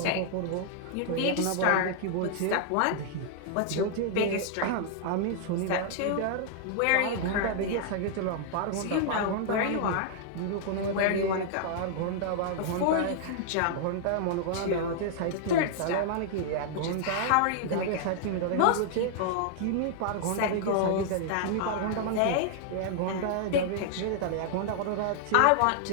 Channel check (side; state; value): both; different; correlation -0.01